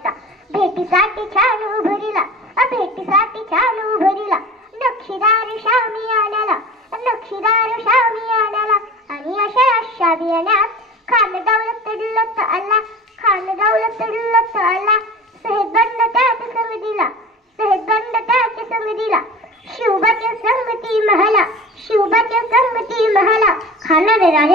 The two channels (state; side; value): normal; both; correlation 0.38